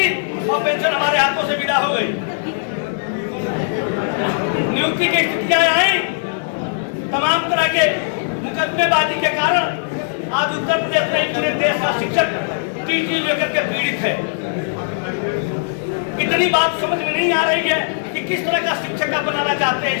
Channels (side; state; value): right; silent; 66 dB below the other